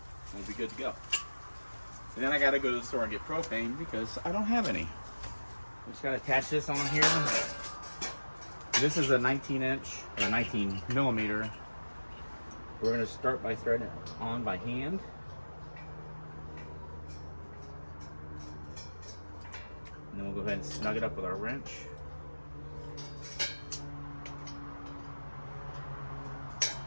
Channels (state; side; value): inverted; both; correlation -1.00